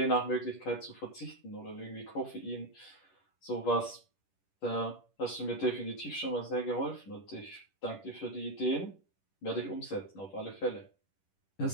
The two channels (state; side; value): late; right; 10 ms